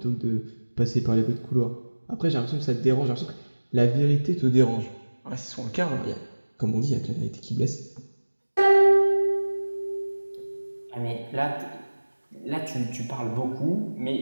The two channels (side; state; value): both; inverted; correlation -1.00